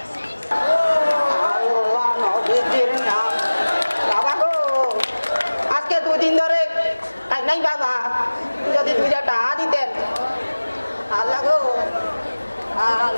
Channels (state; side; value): inverted; both; correlation -1.00